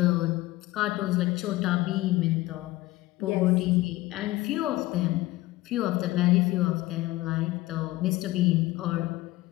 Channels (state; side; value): quieter; right; 18.0 dB